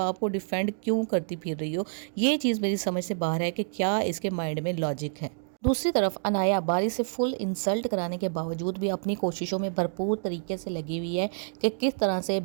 को डिफेंड क्यों करती फिर रही हो? ये चीज़ मेरी समझ से बाहर है कि क्या इसके माइंड में लॉजिक है। दूसरी तरफ अनाया बारी से फुल इंसल्ट कराने के बावजूद भी अपनी कोशिशों में भरपूर तरीके से लगी हुई है कि किस तरह से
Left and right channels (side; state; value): left; silent; digital silence